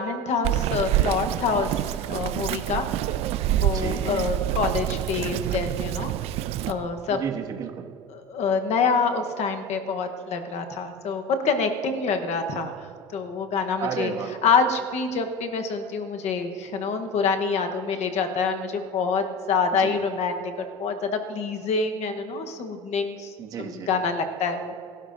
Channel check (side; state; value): both; normal; correlation 0.27